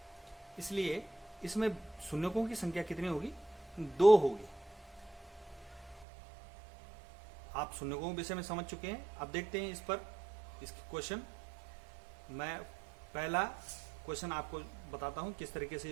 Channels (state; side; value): drops out; left; at 6.1 s